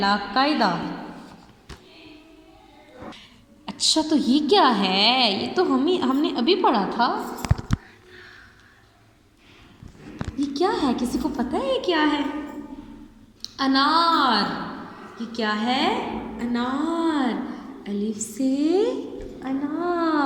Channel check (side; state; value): both; identical; correlation 1.00